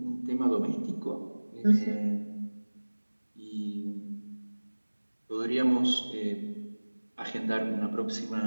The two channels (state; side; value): inverted; both; correlation -1.00